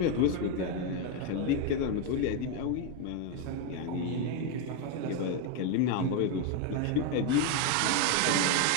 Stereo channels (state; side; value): different; both; correlation 0.02